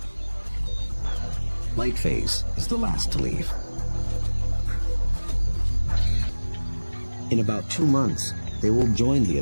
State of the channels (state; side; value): inverted; both; correlation -1.00